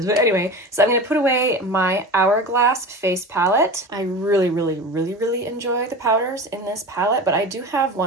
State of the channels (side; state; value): both; normal; correlation 0.31